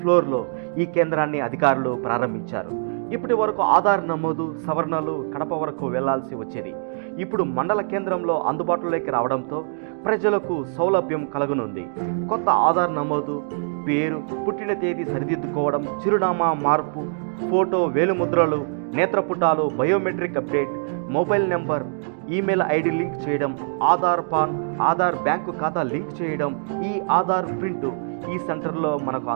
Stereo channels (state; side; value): silent; left; digital silence